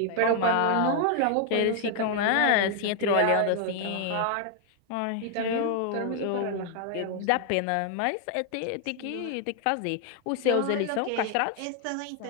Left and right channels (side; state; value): both; different; correlation 0.00